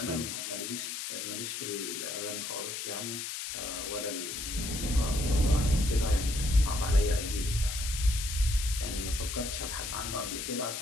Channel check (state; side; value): noise; left; hiss, 5 dB below the sound